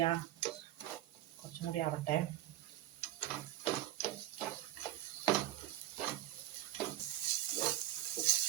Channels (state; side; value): quieter; left; 14.4 dB